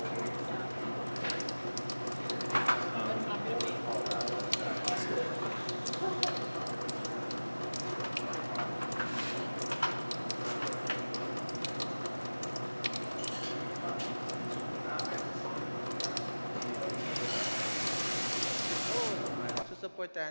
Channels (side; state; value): both; inverted; correlation -1.00